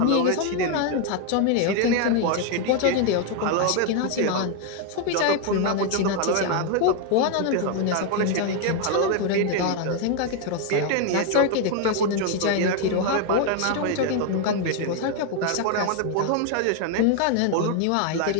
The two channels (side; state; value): both; different; correlation 0.01